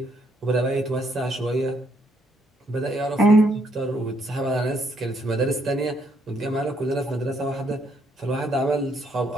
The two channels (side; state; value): both; normal; correlation 0.71